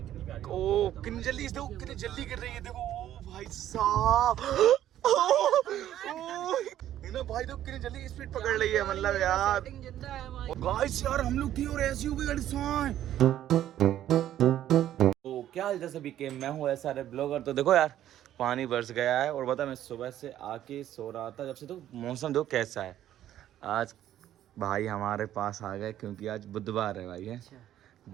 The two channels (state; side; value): quieter; left; 12.0 dB